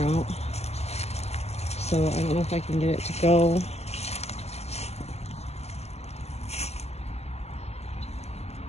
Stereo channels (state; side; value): late; right; 0.30 ms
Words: out. So I don't know if I can get it to go.